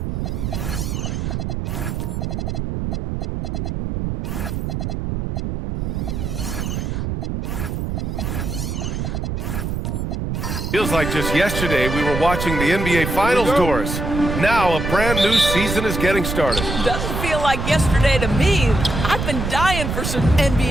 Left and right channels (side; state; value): right; noise; rumble, 3 dB below the sound